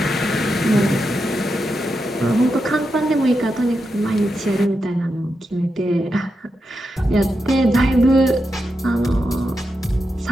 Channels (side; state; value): both; normal; correlation 0.87